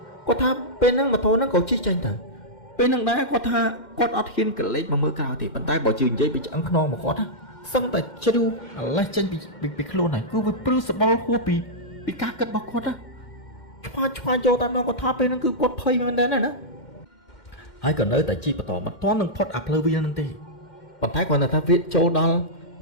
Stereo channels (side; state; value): right; late; 2.1 ms